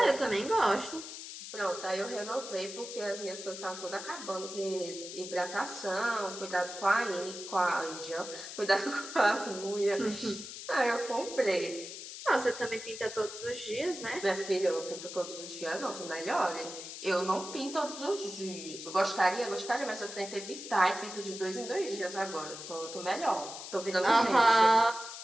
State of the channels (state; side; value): noise; left; hiss, 10 dB below the sound